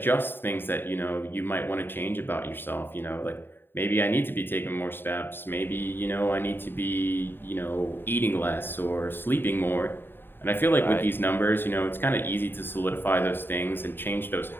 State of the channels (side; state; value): right; late; 0.099 ms